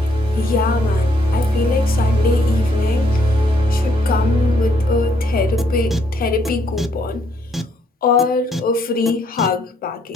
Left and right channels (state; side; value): normal; both; correlation 0.70